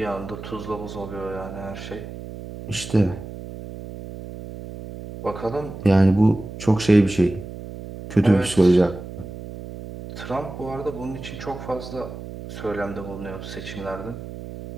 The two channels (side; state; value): right; noise; hum, 11 dB below the sound